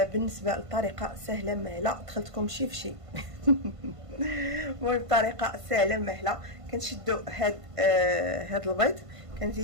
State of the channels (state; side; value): late; left; 1.5 ms